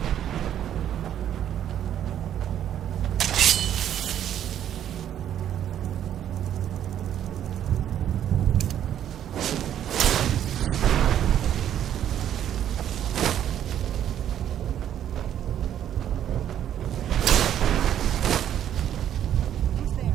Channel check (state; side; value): quieter; left; 10.5 dB